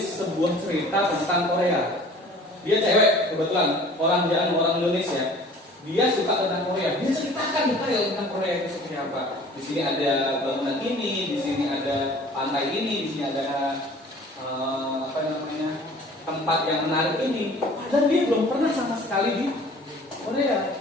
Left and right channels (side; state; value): both; normal; correlation 0.48